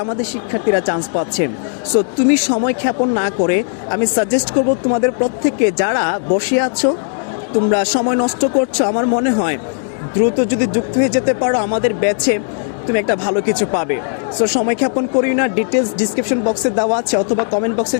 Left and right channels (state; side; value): silent; right; digital silence